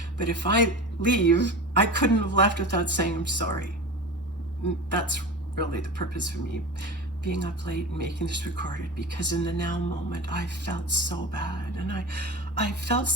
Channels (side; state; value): both; normal; correlation 0.30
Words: But if I leave, I couldn't have left without saying I'm sorry. That's really the purpose for me being up late and making this recorded, because in the now moment I felt so bad, and I felt